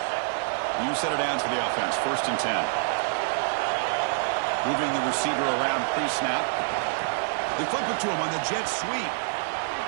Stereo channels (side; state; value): left; silent; 60 dB below the other